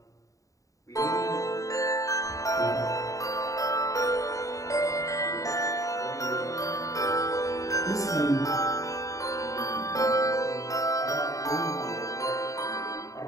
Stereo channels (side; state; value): right; late; 0.16 ms